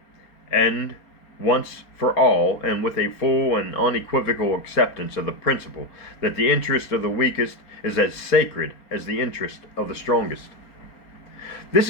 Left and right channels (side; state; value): right; late; 4.3 ms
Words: and once for all, and with a full and unequivocal acceptance of the principle that the interest of the weakest is as sacred as the interest of the strongest. This